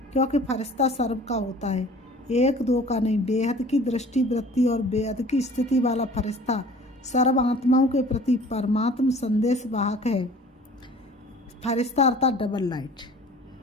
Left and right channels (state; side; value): normal; both; correlation 0.47